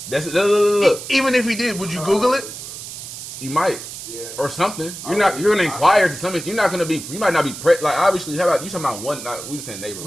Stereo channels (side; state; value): right; noise; hiss, 11 dB below the sound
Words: That's look. Even if he did, would you Google it? You might. Yeah. Or something. You're gonna inquire to some extent. You're not gonna be. You might not be like obviously. How about you talking about one? We just saying neighbor,